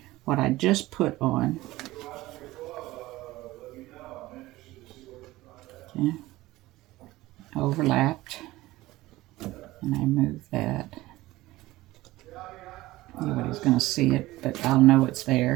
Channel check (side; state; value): left; quieter; 18.0 dB